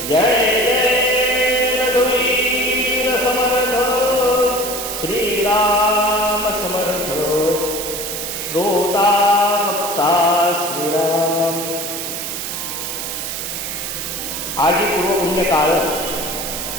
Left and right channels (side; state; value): right; noise; hiss, 5 dB below the sound